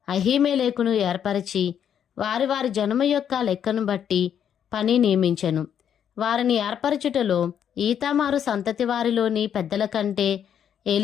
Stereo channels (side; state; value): right; quieter; 8.9 dB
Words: అహీమెలెకును ఏర్పరిచి వారి వారి జనము యొక్క లెక్కను బట్టి పని నియమించెను. వారిని ఏర్పరచుటలో ఈతామారు సంతతి వారిలోని పెద్దల కంటే